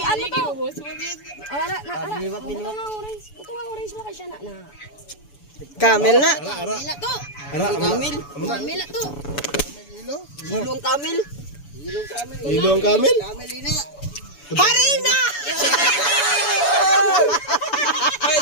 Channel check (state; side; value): late; right; 7.0 ms